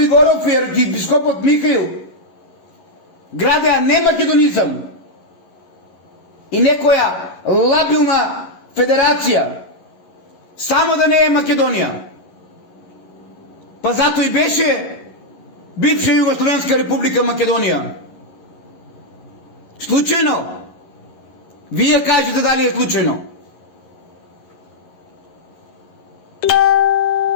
и архиепископот Михаил градеа не македонизам и некоја лабилна федерација, само да не е Македонија. Па затоа и беше бивша Југословенска република Македонија. Случајно? Вие кажете дали е случајно.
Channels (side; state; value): right; late; 11 ms